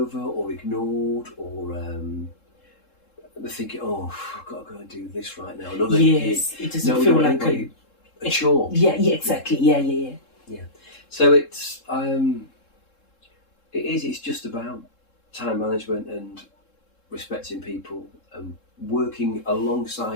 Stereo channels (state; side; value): late; right; 3.7 ms